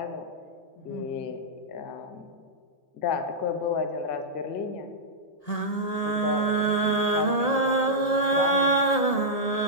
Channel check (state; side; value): late; right; 1.8 ms